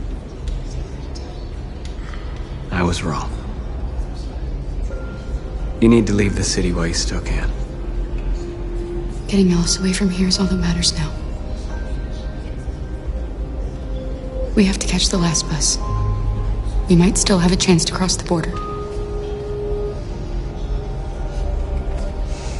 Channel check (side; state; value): both; identical; correlation 1.00